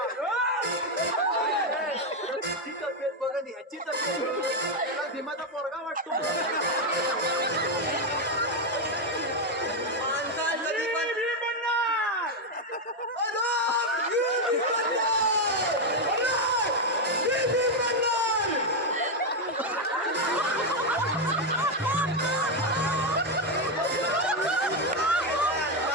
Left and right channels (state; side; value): normal; both; correlation 0.05